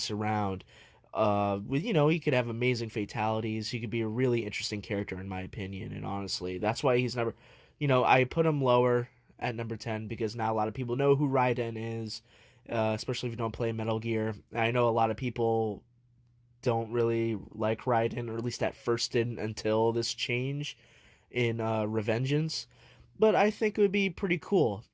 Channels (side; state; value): both; identical; correlation 1.00